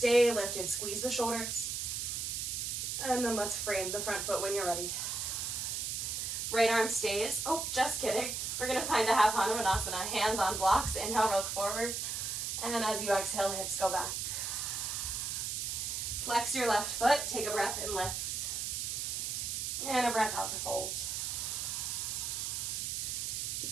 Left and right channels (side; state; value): right; noise; hiss, 2 dB below the sound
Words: lifted, squeeze the shoulders. And then let's frame the front foot when you're ready. Right arm stays. Oh, just kidding. We're gonna find a half Hanumanasana. Hands on blocks, inhale, roll forward. And as you exhale, hips go back. Flex your left foot, take a breath and lift. And a breath out to fold. You